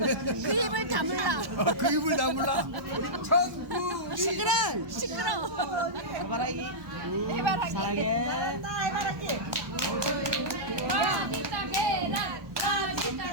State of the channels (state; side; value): late; left; 1.2 ms